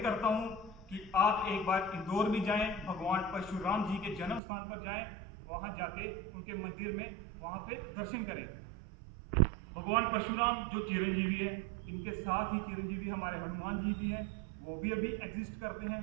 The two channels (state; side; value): drops out; left; at 4.4 s